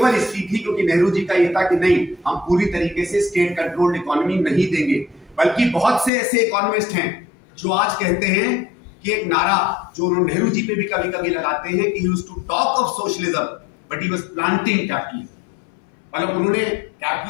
इसलिए थी क्योंकि नेहरू जी का यह था कि नहीं, हम पूरी तरीके से स्टेट कंट्रोल्ड इकोनॉमी नहीं देंगे। बल्कि बहुत से ऐसे इकोनॉमिस्ट हैं जो आज कहते हैं कि एक नारा जो उन्होंने नेहरू जी पे भी कभी कभी लगाते हैं कि he used to talk of socialism but he was planting capitalism. मतलब उन्होंने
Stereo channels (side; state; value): right; drops out; at 6.1 s